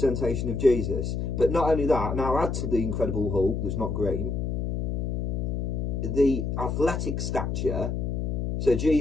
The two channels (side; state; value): left; noise; hum, 1 dB below the sound